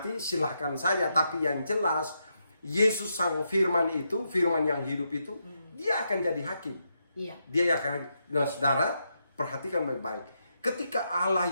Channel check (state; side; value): inverted; both; correlation -0.82